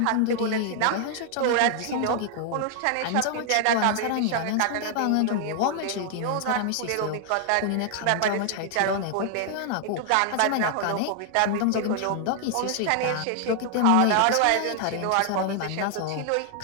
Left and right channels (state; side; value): different; both; correlation 0.00